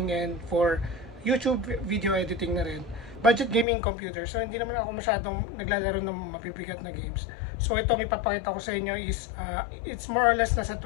and for YouTube video editing na rin. Budget gaming computer. So, hindi naman ako masyadong naglalaro ng mabibigat na games. So, itong ipapakita ko sa inyo is, it's more or less nasa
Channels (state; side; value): drops out; right; at 3.7 s